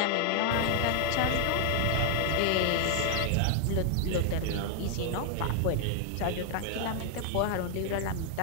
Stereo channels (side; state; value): both; different; correlation 0.00